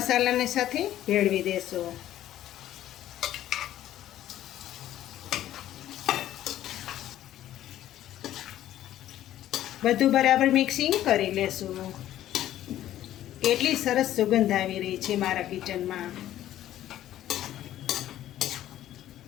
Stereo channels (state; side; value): quieter; right; 12.8 dB